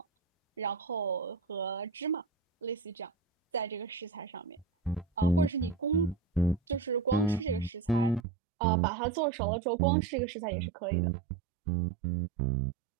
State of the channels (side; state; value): left; drops out; at 8.2 s